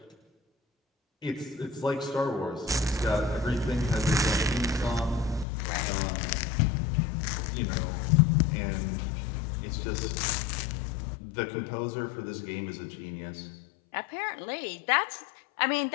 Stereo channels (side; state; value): right; drops out; at 5.5 s